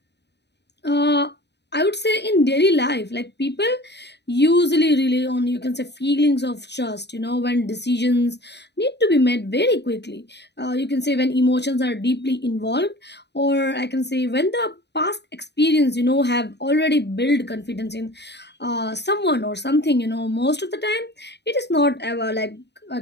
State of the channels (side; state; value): right; late; 0.50 ms